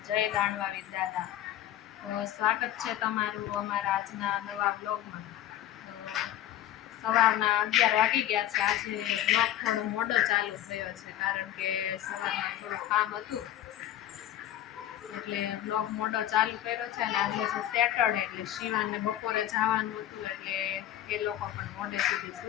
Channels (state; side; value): quieter; right; 12.3 dB